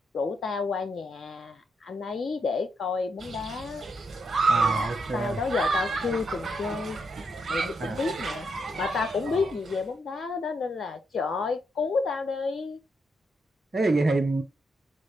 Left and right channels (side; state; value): both; normal; correlation 0.80